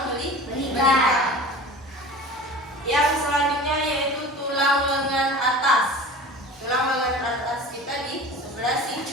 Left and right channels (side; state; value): both; normal; correlation 0.38